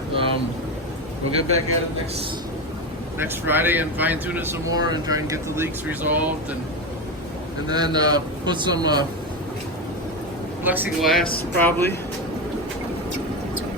We'll get back at it next Friday and fine tune it some more and try and get the leaks resolved, and then put some plexiglass probably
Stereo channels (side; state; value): both; normal; correlation 0.16